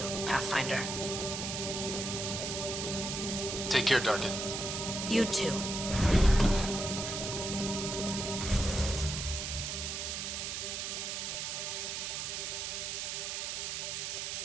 Pathfinder. Take care, Darkin. You too.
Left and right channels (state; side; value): noise; right; hiss, 3 dB below the sound